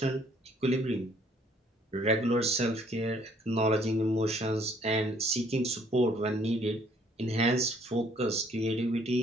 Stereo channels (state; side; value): normal; both; correlation 0.62